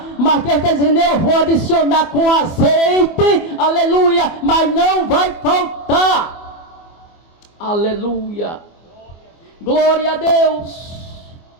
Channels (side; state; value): right; late; 24 ms